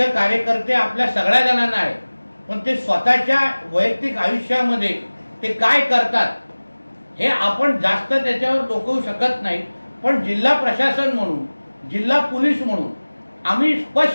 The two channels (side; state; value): both; inverted; correlation -1.00